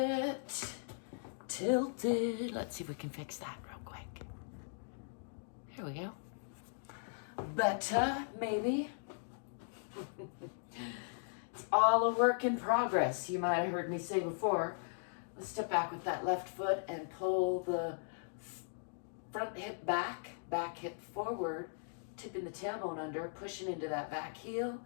tilted. Let's see if we can fix that real quick. Here we go. Better, maybe. It's all a work in progress. You might have heard me say before. Let's step back with that left foot and pull the front hip back, back hip forward, tipping the tailbone under, pushing into that back heel.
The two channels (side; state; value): right; silent; digital silence